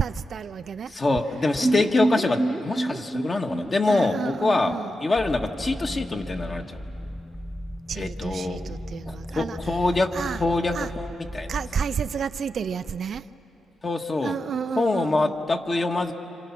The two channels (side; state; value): both; normal; correlation 0.89